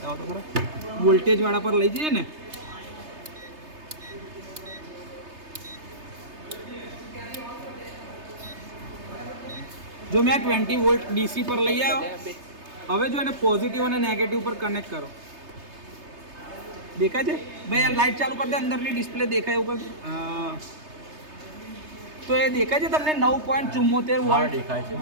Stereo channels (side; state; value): left; late; 3.3 ms